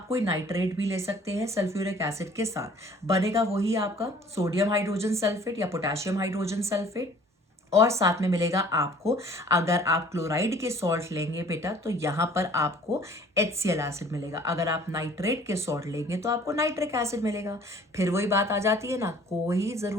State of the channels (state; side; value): normal; both; correlation 0.53